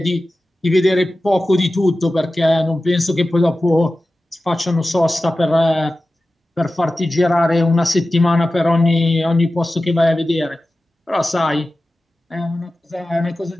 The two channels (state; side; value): normal; both; correlation 0.95